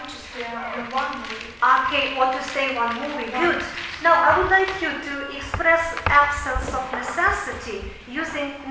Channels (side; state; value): both; identical; correlation 1.00